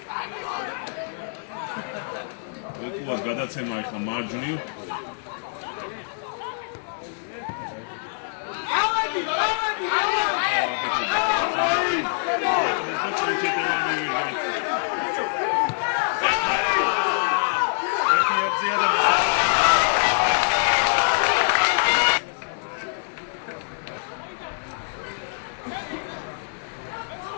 ვეკუას გადაცემა ახლა მარჯვნივ. ავადი!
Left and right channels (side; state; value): right; silent; 62 dB below the other